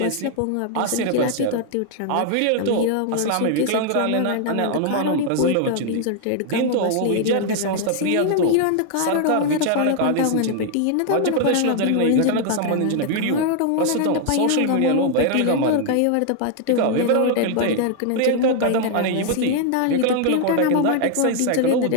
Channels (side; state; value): both; different; correlation 0.00